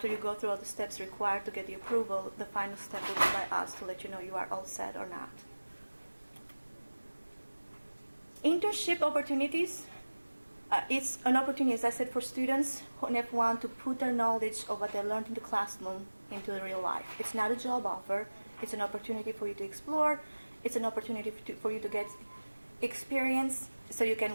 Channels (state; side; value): inverted; both; correlation -1.00